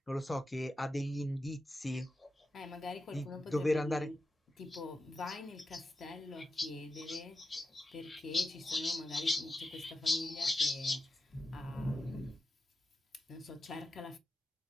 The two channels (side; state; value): both; normal; correlation 0.91